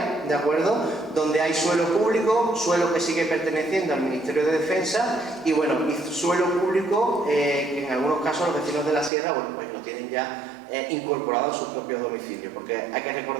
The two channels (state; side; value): drops out; left; at 9.1 s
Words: ¿de acuerdo?, donde hay suelo público, suelo que sigue perteneciendo al Ministerio de Defensa y, bueno, y suelo público que en algunos casos los vecinos de la sierra, bueno, pues lo tienen ya incorporado en sus propios domicilios, porque hay que